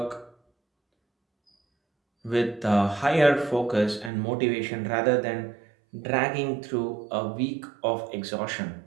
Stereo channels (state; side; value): drops out; left; at 4.1 s